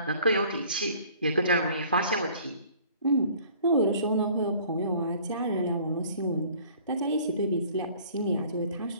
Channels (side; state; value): both; inverted; correlation -0.53